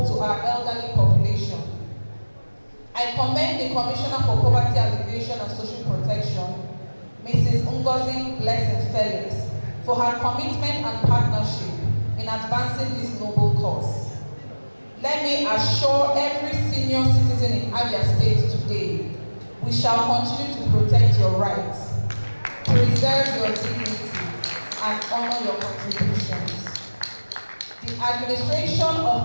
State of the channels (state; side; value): inverted; both; correlation -1.00